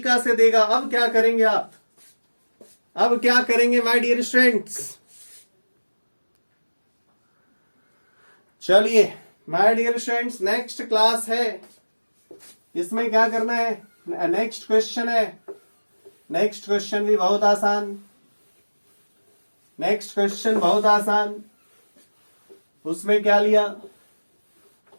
से देगा। अब क्या करेंगे आप? अब क्या करेंगे माय डियर स्टूडेंट्स? चलिए my dear students, next class है, इसमें क्या करना है? नेक्स्ट क्वेश्चन है। नेक्स्ट क्वेश्चन भी बहुत आसान, नेक्स्ट क्वेश्चन बहुत आसान। उसमें क्या लिया?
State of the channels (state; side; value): inverted; both; correlation -1.00